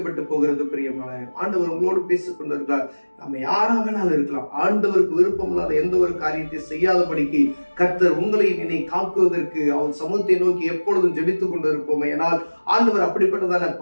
போகிறது. பிரியமான ஆண்டவர் உங்களோடு பேசிக் கொண்டிருக்கிறார். நம்ம யாராக வேணாலும் இருக்கலாம். ஆண்டவருக்கு விருப்பம் இல்லாத எந்த ஒரு காரியத்தை செய்யாதபடிக்கு கர்த்தர் உங்களையும் என்னை காக்குவதற்கு அவர் சமூகத்தை நோக்கி எப்பொழுதும் ஜெபித்துக் கொண்டிருப்போம். ஏனால் ஆண்டவர் அப்படிப்பட்டதான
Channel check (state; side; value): inverted; both; correlation -1.00